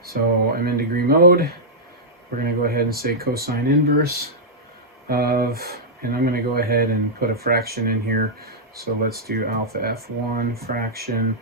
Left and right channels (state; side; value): normal; both; correlation -0.09